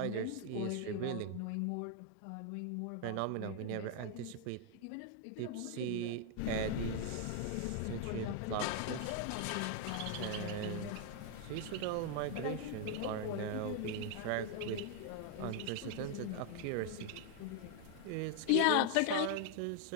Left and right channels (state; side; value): different; both; correlation 0.00